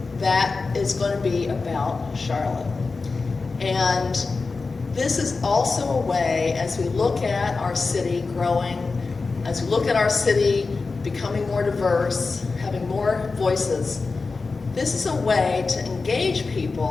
that is going to be about Charlotte. And this is also a way, as we look at our city growing, as we look at our city becoming more diverse, having more voices, this is a way to engage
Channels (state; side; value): quieter; right; 4.1 dB